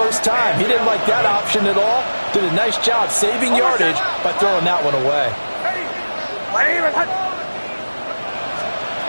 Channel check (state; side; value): inverted; both; correlation -1.00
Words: time. He didn't like that option at all. Did a nice job saving yardage by throwing that one away.